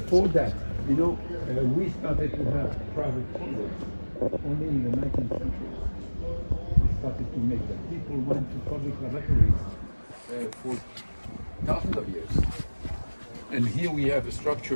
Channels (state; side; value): inverted; both; correlation -1.00